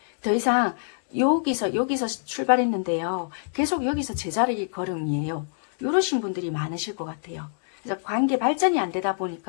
더 이상 여기서 출발했는데요. 계속 여기서 제자리 걸음이에요. 이러신 분들이 많으실 것 같아요. 그래서 관계 발전이 안 되다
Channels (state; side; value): silent; right; digital silence